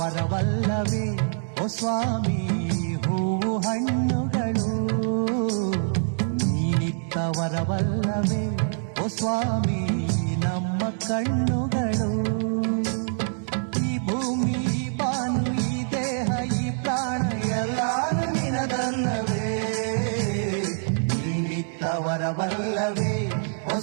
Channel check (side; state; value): left; silent; digital silence